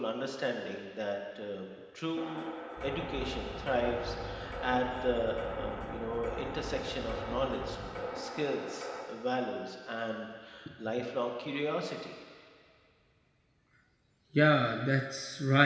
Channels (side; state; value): both; identical; correlation 1.00